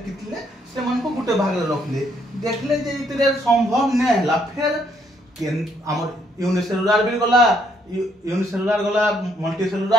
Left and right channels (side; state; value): both; normal; correlation 0.70